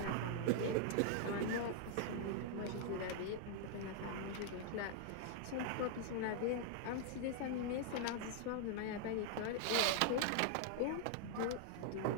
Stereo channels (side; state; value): both; different; correlation -0.01